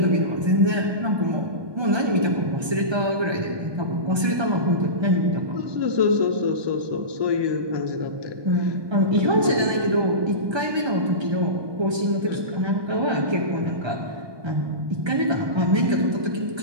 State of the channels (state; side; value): late; left; 1.2 ms